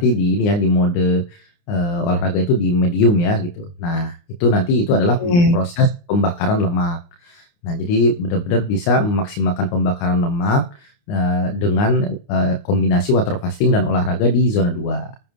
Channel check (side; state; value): right; late; 29 ms